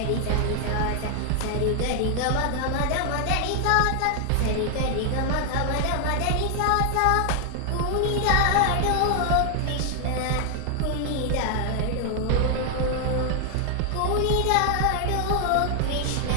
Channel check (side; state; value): both; different; correlation 0.00